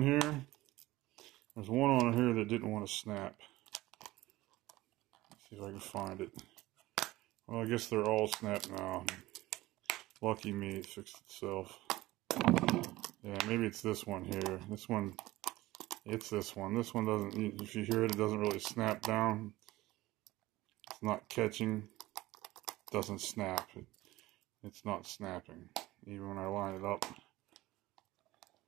here, there's one on here that didn't want to snap. Let's see if I can find it. Well, I guess they're all snapped now. Lucky me, it fixed itself. Yeah, maybe it's this one here. This one, it's this one. This one doesn't, if you hear it, it doesn't really snap down. It's not catching. It doesn't snap. It's not snapping, even when I line it up.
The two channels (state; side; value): quieter; left; 18.1 dB